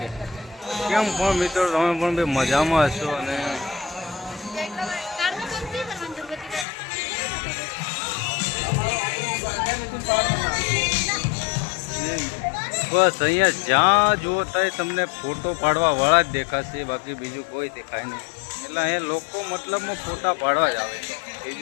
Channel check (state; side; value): drops out; right; at 6.7 s